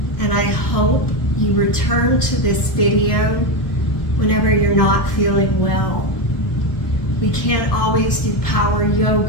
and I hope you return to this video whenever you're not feeling well. We can't always do power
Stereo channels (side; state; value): right; late; 1.4 ms